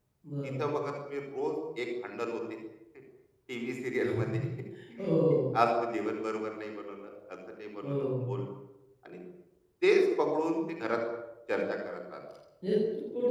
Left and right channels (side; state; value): both; identical; correlation 1.00